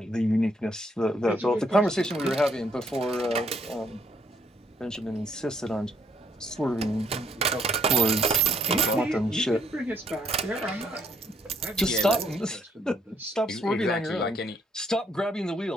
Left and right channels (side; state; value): both; normal; correlation 0.68